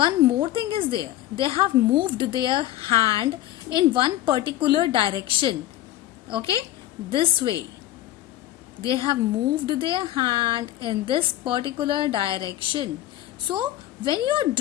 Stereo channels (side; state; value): right; quieter; 14.1 dB